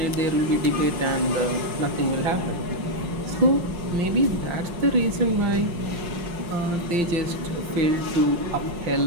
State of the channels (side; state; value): left; late; 5.7 ms